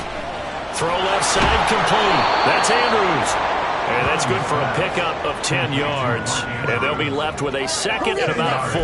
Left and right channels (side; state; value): both; identical; correlation 1.00